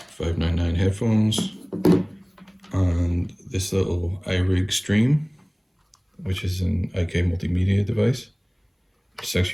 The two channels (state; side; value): identical; both; correlation 1.00